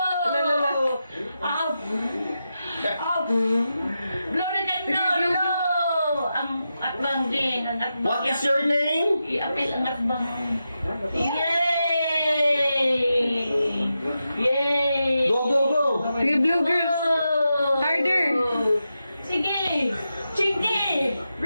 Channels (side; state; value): both; inverted; correlation -0.89